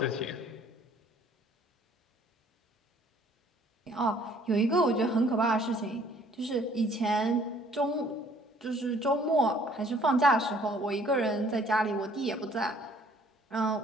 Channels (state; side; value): normal; both; correlation 0.58